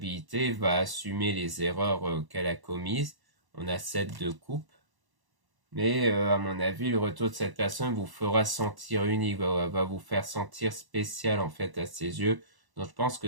va assumer les erreurs qu'elle a commises. On a 7 de coupe. Mais à mon avis, le retour de cette personne vous fera sentir unique, va vous faire sentir spécial en fait à ses yeux. Donc je pense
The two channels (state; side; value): late; left; 1.0 ms